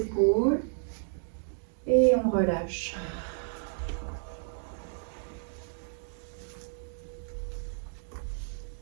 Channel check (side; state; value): left; silent; digital silence